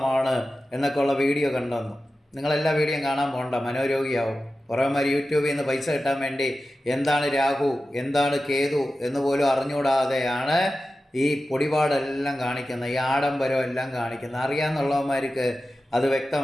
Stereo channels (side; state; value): both; normal; correlation 0.93